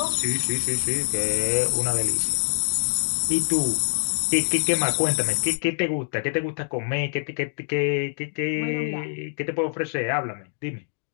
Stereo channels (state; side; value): silent; right; digital silence